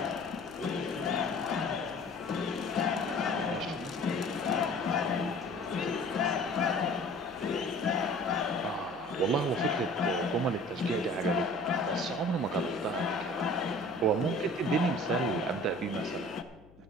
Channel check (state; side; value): noise; left; hum, 24 dB below the sound